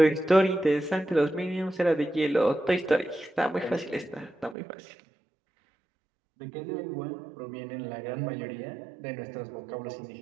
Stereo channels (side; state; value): left; drops out; at 4.5 s